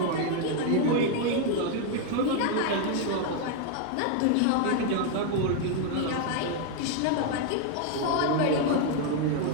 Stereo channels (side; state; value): both; different; correlation 0.00